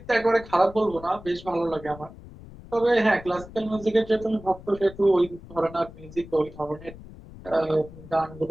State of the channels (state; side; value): noise; left; rumble, 17 dB below the sound